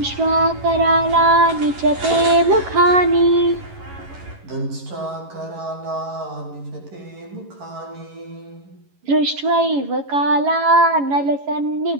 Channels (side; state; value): left; late; 11 ms